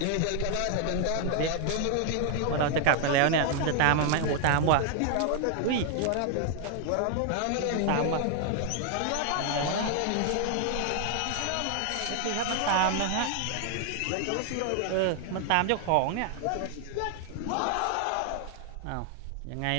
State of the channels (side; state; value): both; different; correlation 0.00